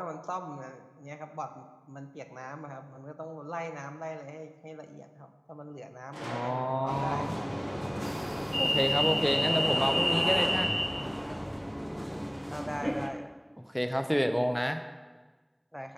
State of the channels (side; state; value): both; identical; correlation 1.00